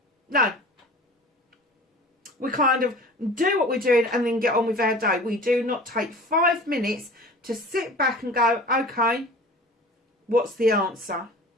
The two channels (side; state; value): both; normal; correlation 0.41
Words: No. We kind of do what we're doing and then get on with our day. We do not take 5 minutes to sit back and go, okay, what's the answer?